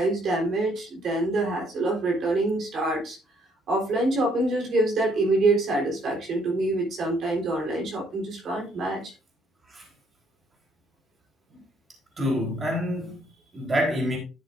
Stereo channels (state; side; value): normal; both; correlation 0.67